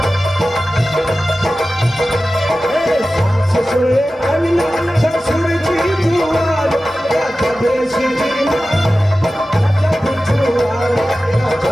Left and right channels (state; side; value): normal; both; correlation 0.95